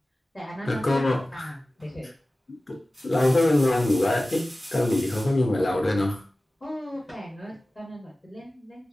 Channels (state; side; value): normal; both; correlation 0.96